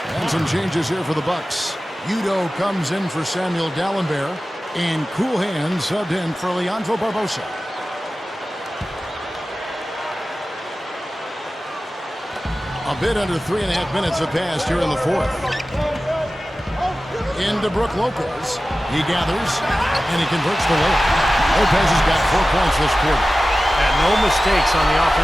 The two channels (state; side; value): normal; both; correlation 0.95